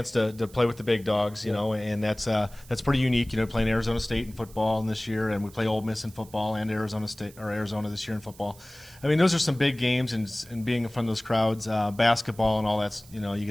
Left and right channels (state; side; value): noise; right; hiss, 23 dB below the sound